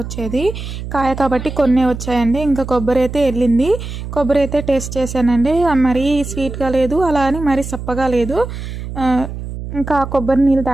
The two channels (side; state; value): right; noise; hum, 8 dB below the sound